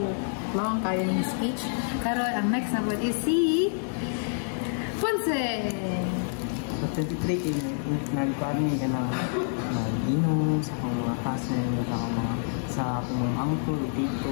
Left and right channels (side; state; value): right; silent; 57 dB below the other